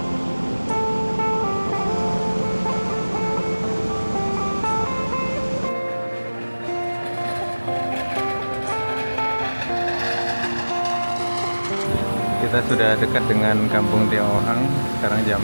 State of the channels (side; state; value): both; inverted; correlation -1.00